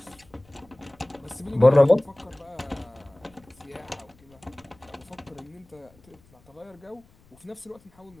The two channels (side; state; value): left; noise; rumble, 29 dB below the sound